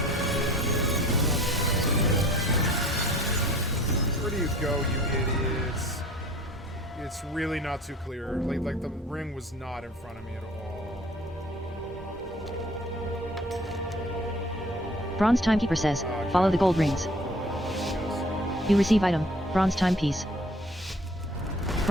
Where do you go, you idiots? It's really not too clear. Like the ring was not in front of me at all. Bronze Timekeeper says, follow the gold rings. You receive item, Bronze Timepiece.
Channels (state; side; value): normal; both; correlation 0.50